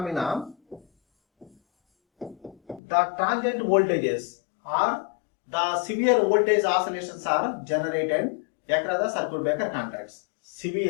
the transient voltages or the severe voltage oscillations are generated across the circuit breaker contacts.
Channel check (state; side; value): drops out; right; at 2.8 s